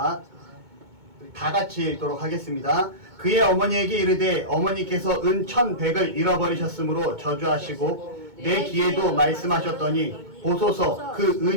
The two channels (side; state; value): left; late; 2.2 ms